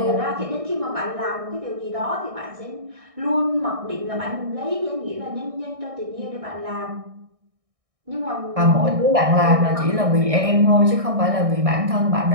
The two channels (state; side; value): late; left; 1.6 ms